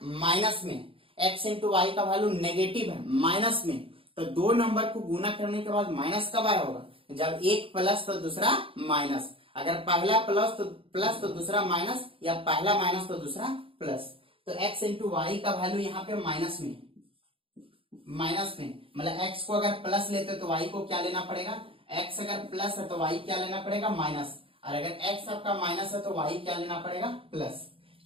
माइनस में, x इंटू वाई का वैल्यू नेगेटिव है, माइनस में, तो दो नंबर को गुना करने के बाद माइनस कब आया होगा, जब एक प्लस तो दूसरा माइनस, अगर पहला प्लस तो दूसरा माइनस, या पहला माइनस तो दूसरा प्लस। तो x इंटू वाई का वैल्यू यहाँ पे माइनस में, मतलब x को अगर प्लस लेते तो y को क्या लेना पड़ेगा, x अगर प्लस है तो y क्या लेना पड़ेगा, माइनस, और अगर x आपका माइनस है तो y क्या लेना पड़ेगा, प्लस।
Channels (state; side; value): late; left; 0.26 ms